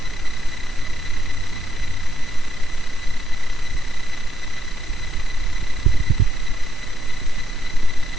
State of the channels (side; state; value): both; normal; correlation 0.77